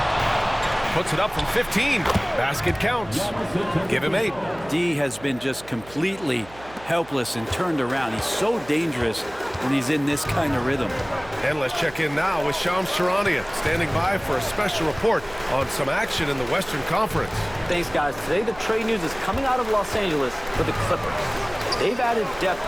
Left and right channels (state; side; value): noise; right; hum, 21 dB below the sound